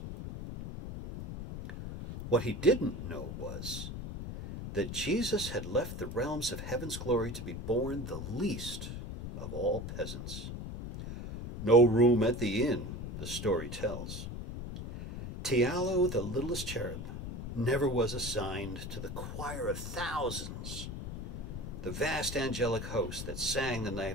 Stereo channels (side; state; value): left; noise; rumble, 7 dB below the sound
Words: What he didn't know was that Jesus had left the realms of heaven's glory to be born the least of all peasants. No room at the inn, the story tells. Tialo, the littlest cherub, never was assigned to the choir of thousands, the vast angelic host that sang the